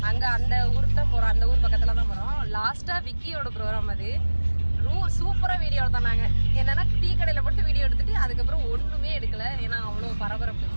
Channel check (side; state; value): both; inverted; correlation -1.00